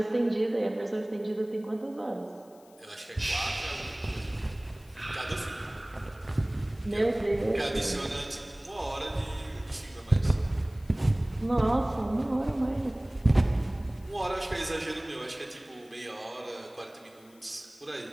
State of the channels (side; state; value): left; noise; hiss, 28 dB below the sound